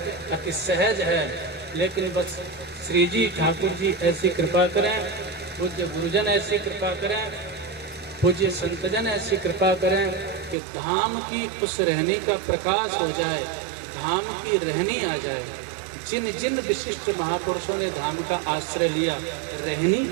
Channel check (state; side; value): drops out; left; at 10.6 s